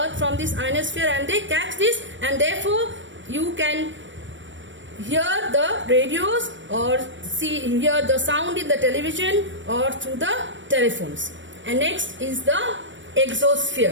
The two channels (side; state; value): left; late; 0.55 ms